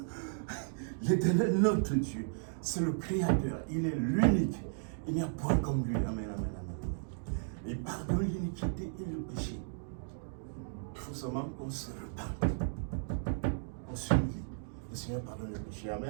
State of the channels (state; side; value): silent; left; digital silence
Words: L'Éternel, notre Dieu, c'est le Créateur. Il est l'unique. Il n'y a point comme lui. Amen, amen, amen. Il pardonne l'iniquité et le péché. Il faut seulement qu'on se repente. On s'humilie. Le Seigneur pardonne le péché.